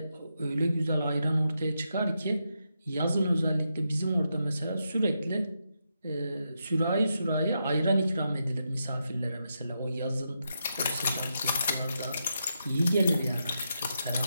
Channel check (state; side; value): inverted; both; correlation -0.84